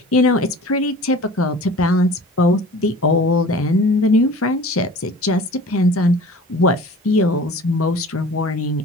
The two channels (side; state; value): both; normal; correlation 0.43